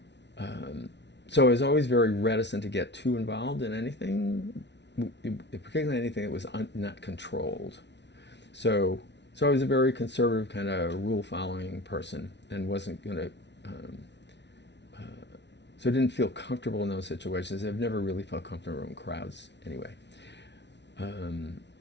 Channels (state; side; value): late; right; 0.51 ms